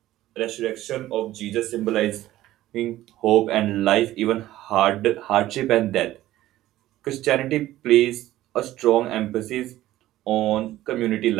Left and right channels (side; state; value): left; quieter; 14.9 dB